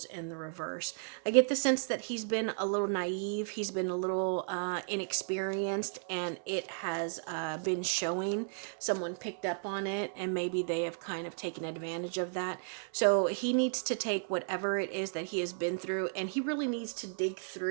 in the reverse. I get the sense that he's been a little naive. He's been a little inexperienced, and it has been showing. Someone picked up on it, and maybe they have kind of taken advantage of that. So he needs to take whatever it is that he has been through, and he really needs to dig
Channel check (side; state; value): left; silent; 55 dB below the other